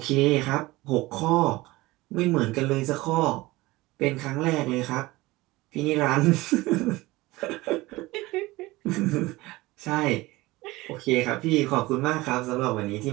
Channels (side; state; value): left; quieter; 20.0 dB